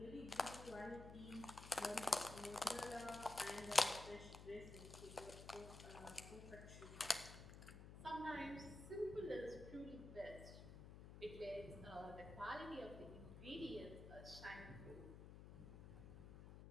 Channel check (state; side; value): noise; left; hum, 12 dB below the sound